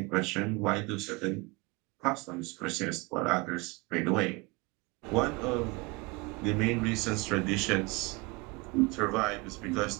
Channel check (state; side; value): quieter; left; 25.4 dB